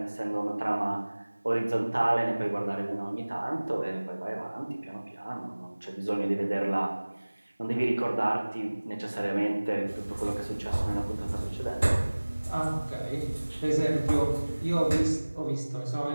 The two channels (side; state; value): both; inverted; correlation -1.00